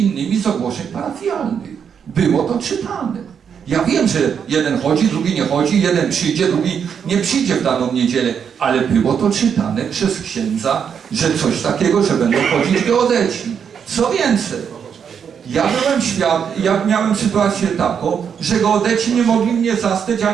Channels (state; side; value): quieter; left; 7.4 dB